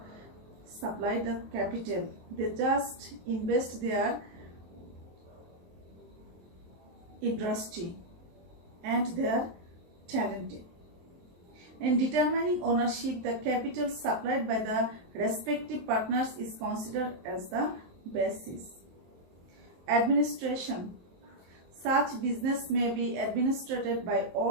supply the capital. They just invest their industry and they are talented. In determining ownership, the capital supplied by the respective partners is considered as the basis. Administration. Such business may be administered by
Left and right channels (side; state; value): left; late; 23 ms